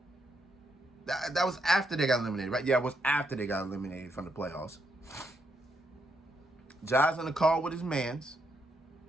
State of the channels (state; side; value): normal; both; correlation 0.78